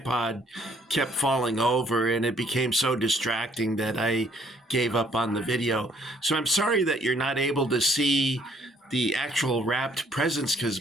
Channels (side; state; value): both; normal; correlation 0.64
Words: kept falling over, and it became so distracting that I gave up on the video. So I'm sorry that you're not able to see the actual wrapped presents,